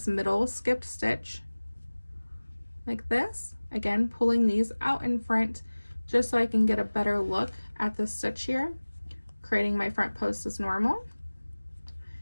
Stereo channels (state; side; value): inverted; both; correlation -1.00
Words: middle skipped stitch like this. Again, pulling these out in front just so I can get a better look at the stitch here, creating my front post as normal,